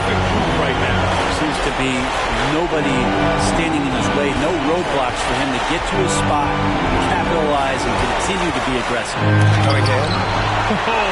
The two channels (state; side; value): identical; both; correlation 1.00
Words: mood right now. Seems to be nobody standing in his way, no roadblocks for him to get to his spot, capitalize, and continue to be aggressive.